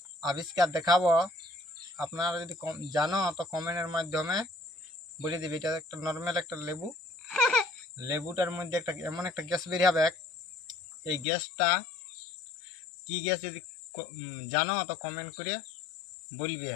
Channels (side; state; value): right; drops out; at 11.2 s